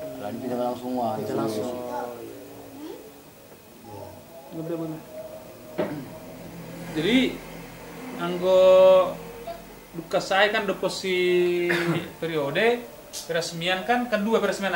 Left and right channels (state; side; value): identical; both; correlation 1.00